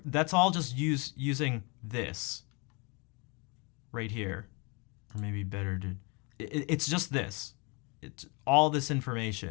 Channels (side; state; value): right; quieter; 30.8 dB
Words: that's all just using this right here, or maybe better to, it's just this. It's all this